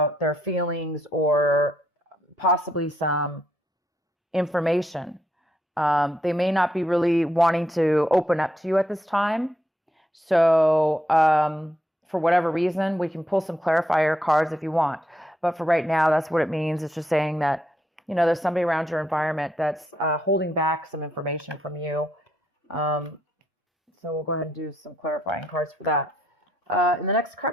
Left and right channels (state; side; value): normal; both; correlation 0.77